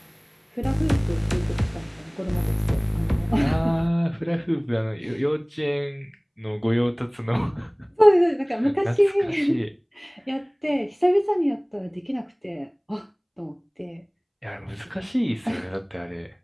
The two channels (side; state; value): both; identical; correlation 1.00